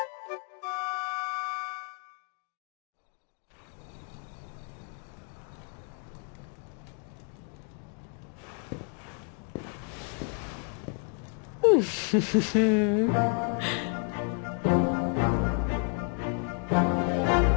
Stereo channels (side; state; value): right; quieter; 39.5 dB